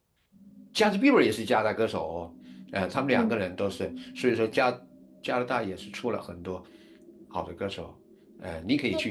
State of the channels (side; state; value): both; identical; correlation 1.00